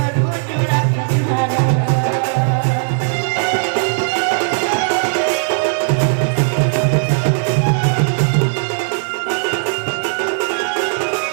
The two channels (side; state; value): left; silent; digital silence